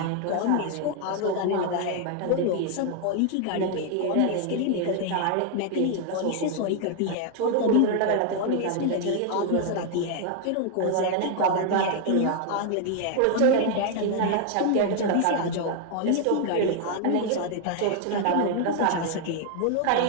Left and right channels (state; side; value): different; both; correlation 0.00